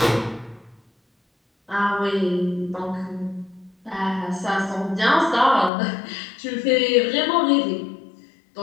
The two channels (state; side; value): drops out; right; at 5.7 s